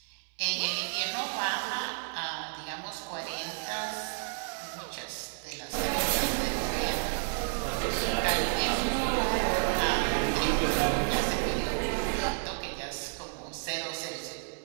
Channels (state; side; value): silent; left; 57 dB below the other